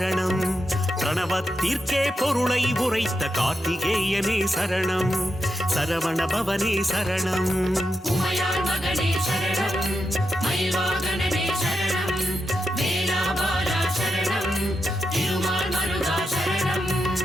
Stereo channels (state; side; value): normal; both; correlation 0.86